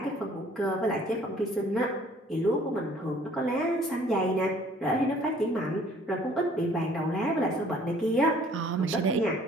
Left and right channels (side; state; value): both; normal; correlation 0.56